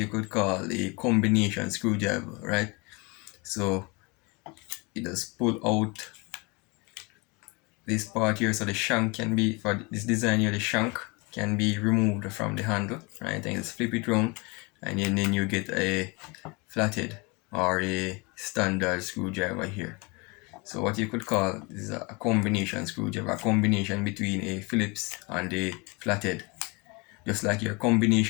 could call a combination screwdriver, right? So it does pull out this part here, so the shank can be, for this design here, the shank can be removed from the handle, right? And just flip it around, and then you get a flatted or a standard screwdriver here. So what you could call is a combination screwdriver, a combination between a Phillips and a flatted. Just like your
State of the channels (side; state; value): right; quieter; 28.3 dB